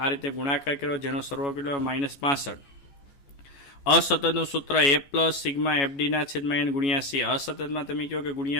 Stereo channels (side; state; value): right; late; 14 ms